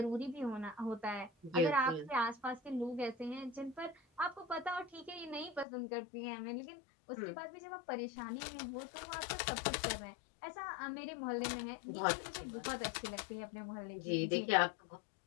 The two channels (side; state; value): right; drops out; at 5.7 s